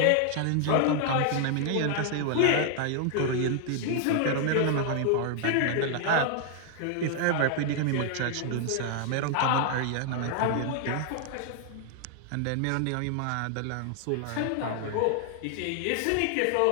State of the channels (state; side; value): different; both; correlation 0.00